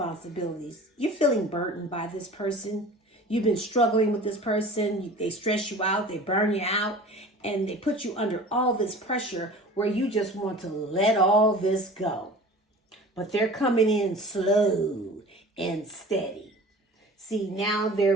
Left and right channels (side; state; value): both; normal; correlation 0.41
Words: You're feeling burdened by this person. You've been struggling with this person. They stress you out. They burn you out. And they put you under all this pressure where you just want to let all this go. But they're coming in slow and steady. See, now